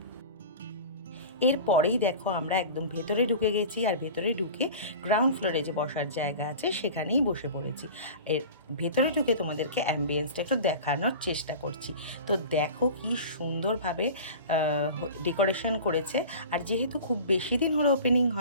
এরপরেই দেখো আমরা একদম ভেতরে ঢুকে গেছি, আর ভেতরে ঢুকে গ্রাউন্ড ফ্লোরে যে বসার জায়গা আছে সেখানেই বসে পড়েছি। এর ভেতরে ঢুকে তোমাদেরকে অ্যাম্বিয়েন্সটা একটু দেখানোর চেষ্টা করছি। তো দেখো কি সুন্দরভাবে ডেকোরেশন করেছে, আর যেহেতু খুব বেশি দিন হলো ওপেনিং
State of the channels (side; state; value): both; inverted; correlation -0.36